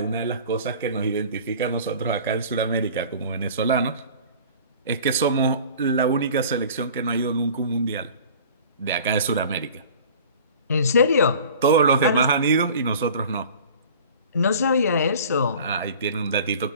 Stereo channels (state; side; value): inverted; both; correlation -0.44